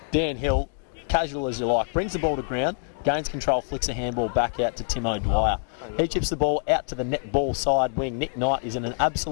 Dan Hill, casual as you like, brings the ball to ground, gains control, flicks a handball back out to Timo Dwyer. He chips the ball out to the net ball side wing. Nick Knight is in an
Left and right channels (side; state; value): right; silent; digital silence